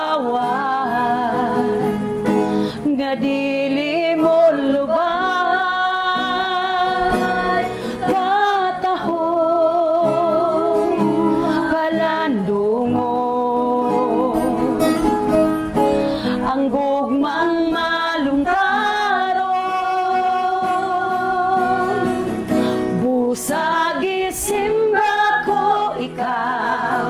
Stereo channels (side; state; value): both; identical; correlation 1.00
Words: nga dili mo lubay katahong palandungon ang gugmang malungtaron busagi simba ko